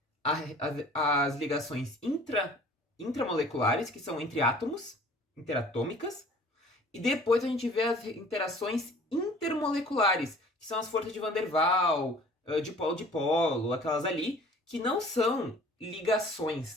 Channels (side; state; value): both; normal; correlation 0.49